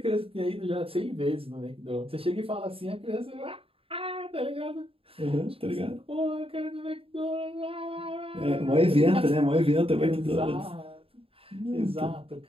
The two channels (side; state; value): left; late; 0.27 ms